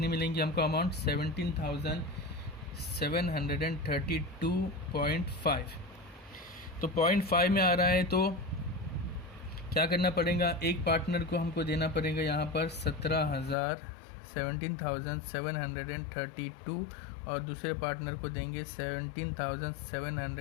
मिलेंगी हमको अमाउंट? 17,732.5। तो 0.5 में आ रहा है, तो क्या करना पड़ेगा? एक पार्टनर को हमको देना पड़ेगा यहाँ पर 17,732 और दूसरे पार्टनर को देंगे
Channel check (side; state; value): right; drops out; at 13.6 s